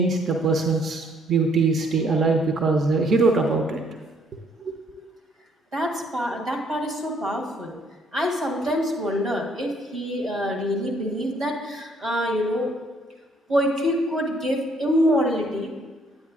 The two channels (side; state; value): both; normal; correlation 0.66